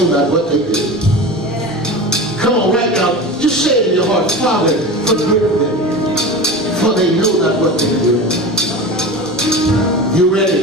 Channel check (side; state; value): both; normal; correlation 0.31